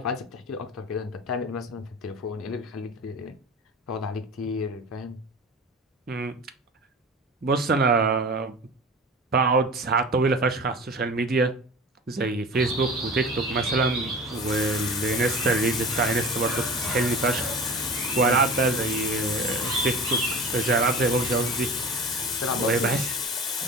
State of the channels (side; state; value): both; normal; correlation 0.36